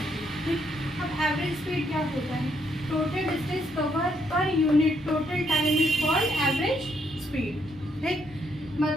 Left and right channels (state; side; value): normal; both; correlation 0.73